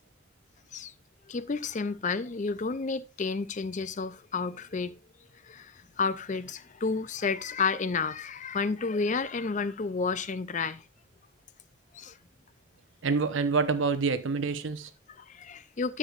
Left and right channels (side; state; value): both; normal; correlation 0.11